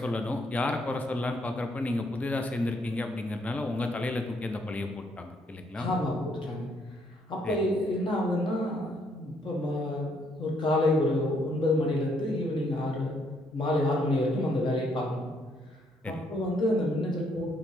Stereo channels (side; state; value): both; normal; correlation 0.71